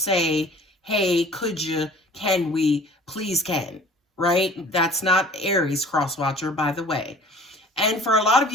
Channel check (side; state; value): both; normal; correlation 0.47